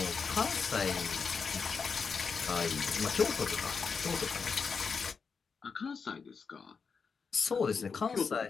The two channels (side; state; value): right; quieter; 5.4 dB